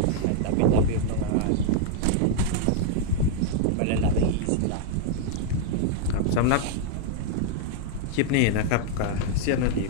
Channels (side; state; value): both; different; correlation 0.00